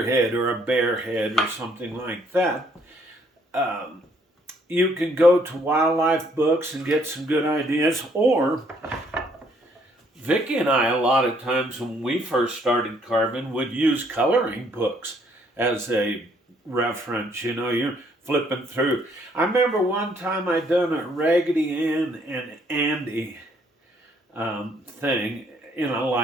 head or a bear head or something like that, you can go to wildlife books and get some good ideas, or Vicky and I, a lot of times when we first started carving, would use coloring books as a reference. You know, you're flipping through. I remember one time I done a Raggedy Ann and Andy thing in a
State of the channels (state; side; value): normal; both; correlation 0.67